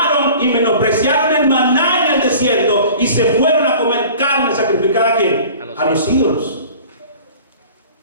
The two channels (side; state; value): both; inverted; correlation -0.44